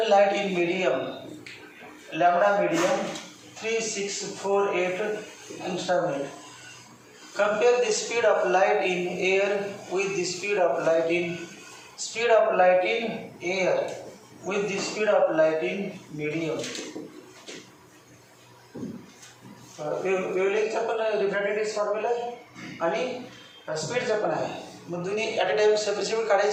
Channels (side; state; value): both; identical; correlation 1.00